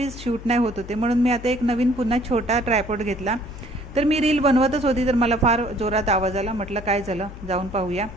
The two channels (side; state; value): left; noise; hum, 14 dB below the sound